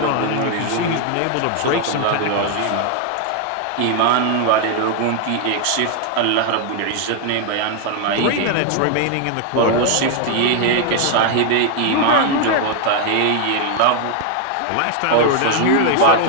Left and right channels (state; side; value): different; both; correlation 0.00